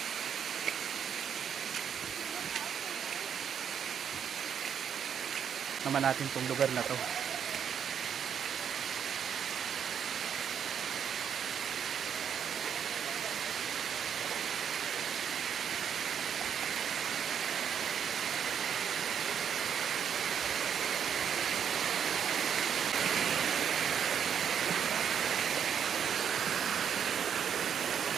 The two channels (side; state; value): left; quieter; 8.1 dB